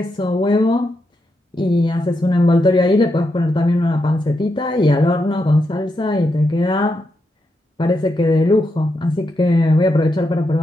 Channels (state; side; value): normal; both; correlation 0.84